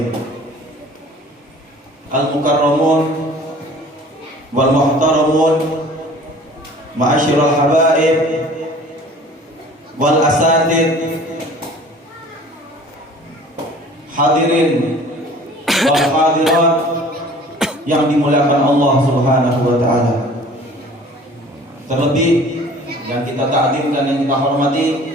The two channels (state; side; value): normal; both; correlation 0.48